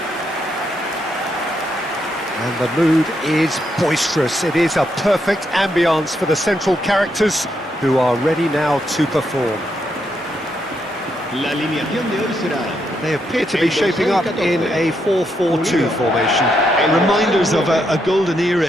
And the mood is boisterous. It is a perfect ambience for the central characters who are ready now to perform. La alineación de hoy será. They appear to be shaping up in a 4-4-2 formation. Reminders of a golden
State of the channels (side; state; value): both; normal; correlation 0.79